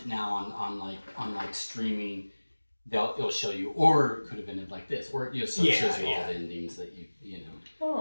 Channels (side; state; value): both; inverted; correlation -1.00